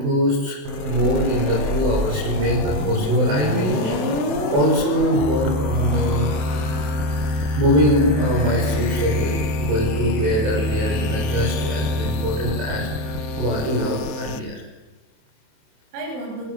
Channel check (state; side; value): late; left; 27 ms